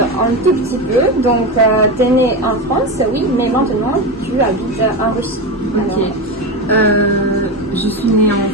tout petit peu? Donc, tu es né en France, oui, mais maintenant tu habites en Russie. Ok. Je suis née en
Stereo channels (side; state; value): both; normal; correlation 0.18